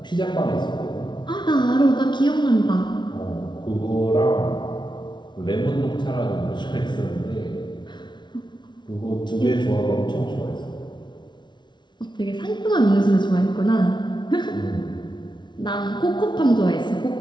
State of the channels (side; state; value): right; late; 0.22 ms